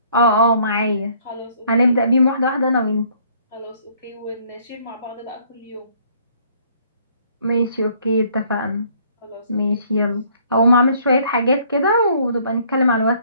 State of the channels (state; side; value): inverted; both; correlation -0.61